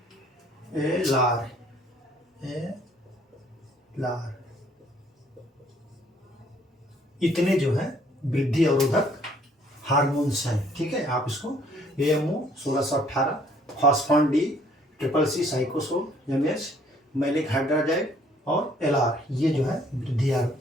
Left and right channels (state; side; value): normal; both; correlation 0.62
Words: एलार। एलार। इतने जो है वृद्धि अवरोधक हार्मोन्स हैं। ठीक है, आप इसको AMO 1618, phosphon D, triple C cycocel, MH malic hydrazide और एलआर, ये जो है वृद्धि